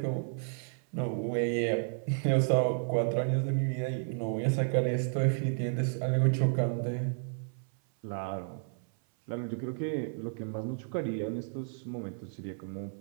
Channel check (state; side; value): silent; left; 56 dB below the other